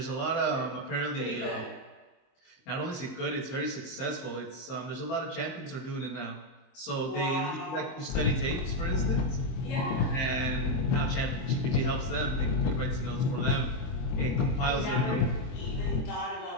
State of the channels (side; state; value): right; late; 23 ms